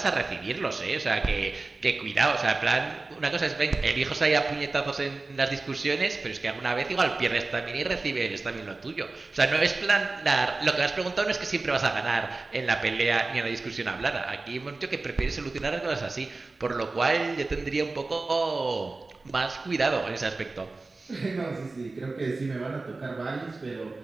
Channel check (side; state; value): left; quieter; 3.5 dB